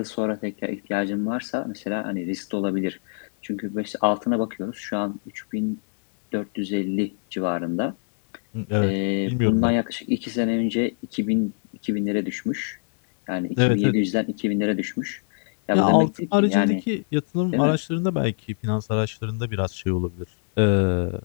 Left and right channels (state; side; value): silent; right; 62 dB below the other